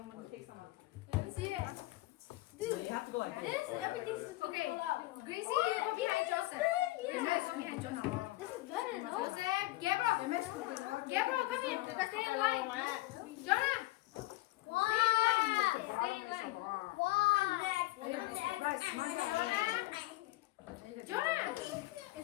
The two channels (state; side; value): quieter; right; 19.6 dB